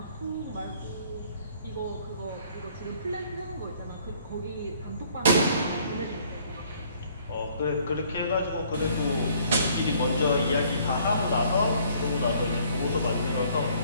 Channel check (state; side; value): inverted; both; correlation -0.60